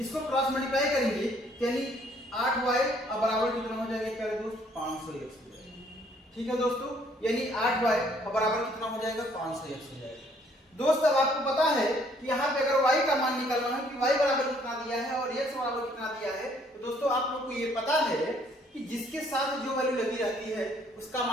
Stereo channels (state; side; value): normal; both; correlation 0.63